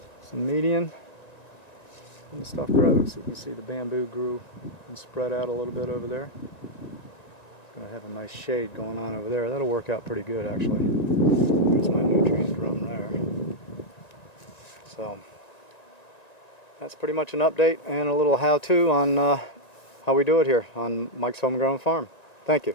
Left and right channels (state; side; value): late; right; 1.9 ms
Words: some medium, and the stuff grows. You can see the bamboo grew and spread out a little bit over there. It's going to have a nice shade going on over there. That'll work out pretty good actually. There's my nutrient drum there. So that's pretty much an update and a little how-to on how we do it here on Mike's Homegrown Farm. Thank you.